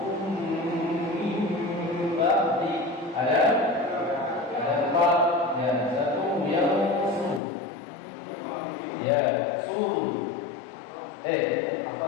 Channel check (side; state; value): right; drops out; at 7.4 s